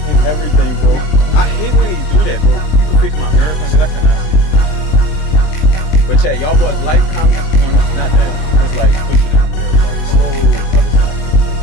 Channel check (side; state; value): right; late; 20 ms